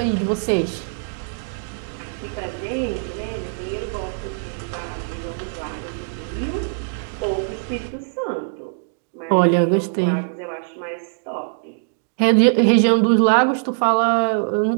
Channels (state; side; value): silent; left; digital silence